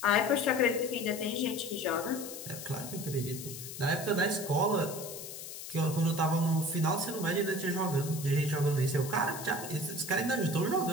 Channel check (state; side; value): noise; left; hiss, 10 dB below the sound